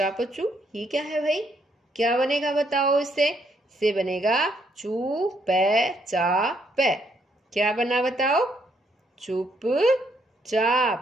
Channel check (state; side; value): normal; both; correlation 0.72